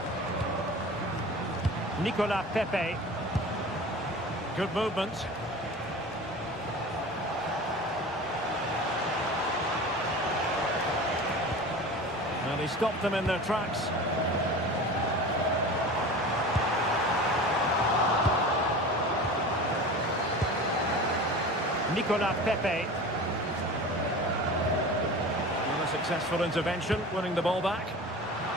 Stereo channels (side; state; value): both; normal; correlation 0.35